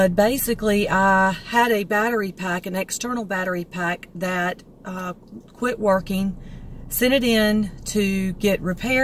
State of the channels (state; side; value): identical; both; correlation 1.00